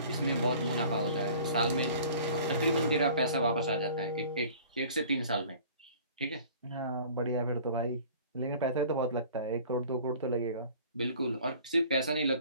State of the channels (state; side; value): inverted; both; correlation -0.48